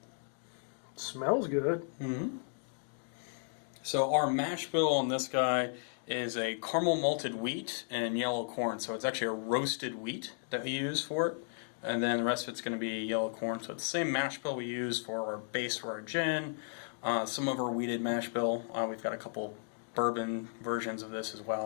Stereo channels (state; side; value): silent; right; digital silence